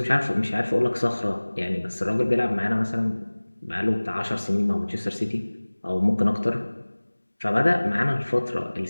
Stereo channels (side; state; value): both; inverted; correlation -1.00